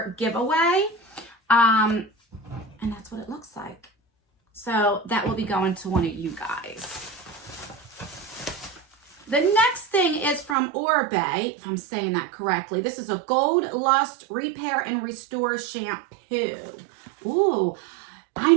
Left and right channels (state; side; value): drops out; left; at 10.6 s